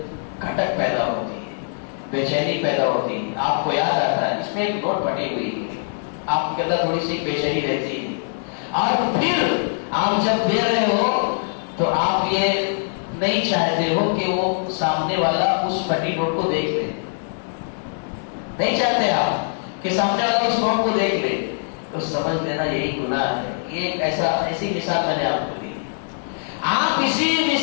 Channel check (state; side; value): silent; right; digital silence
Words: کھٹک پیدا ہوتی ہے، بے چینی پیدا ہوتی ہے، آپ کو یاد آتا ہے اس میں ایک نوٹ پھٹی ہوئی ہے، آپ کے اندر تھوڑی سی بے چینی رہتی ہے، اور پھر آپ جب دے رہے ہو تو آپ یہ نہیں چاہتے ہو کہ وہ سامنے والا اس پھٹی نوٹ کو دیکھ لے، نہیں چاہتے آپ کہ سامنے والا اس نوٹ کو دیکھ لے، تو سمجھ لینا یہی گناہ ہے۔ یہ ایسی مثال میں نے آپ کو دی۔ آپ اسی